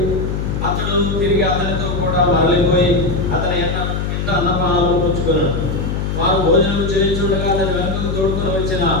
అతడు తిరిగి అతనితో కూడా మరలిపోయి అతని ఇంట అన్నపానాలు పుచ్చుకున్నాడు. వారు భోజనం చేయించుండగా అతని వెనుకకు తోడుకొని వచ్చిన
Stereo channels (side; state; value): left; noise; hum, 2 dB below the sound